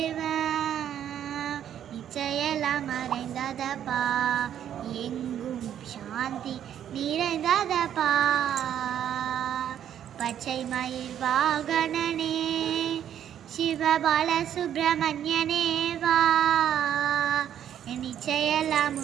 நிச்சயெல்லாம் மறைந்ததப்பா, எங்கும் சாந்தி நிறைந்ததப்பா. பச்சை மயில் வாகனனே சிவ பாலசுப்ரமணியனே வா, நிச்சயெல்லாம்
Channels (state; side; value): quieter; left; 10.0 dB